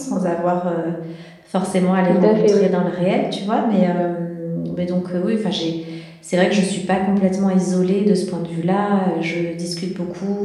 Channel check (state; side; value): identical; both; correlation 1.00